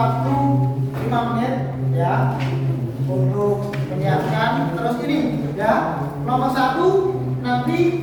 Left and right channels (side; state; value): both; identical; correlation 1.00